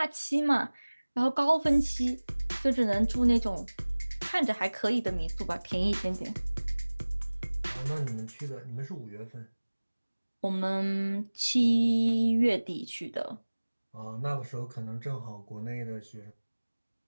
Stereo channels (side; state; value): both; inverted; correlation -1.00